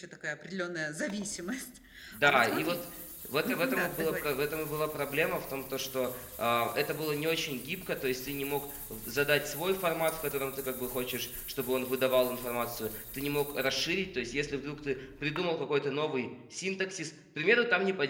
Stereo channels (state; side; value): identical; both; correlation 1.00